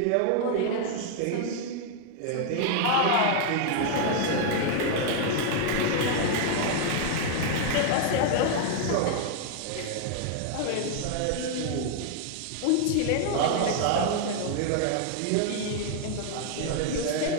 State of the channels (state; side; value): different; both; correlation 0.00